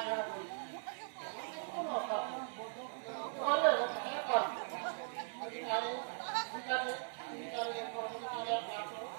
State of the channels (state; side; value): silent; left; 51 dB below the other